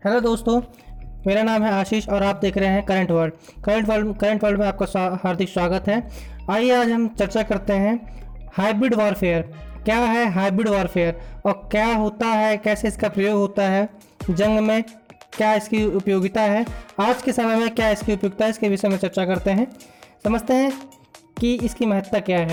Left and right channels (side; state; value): both; identical; correlation 1.00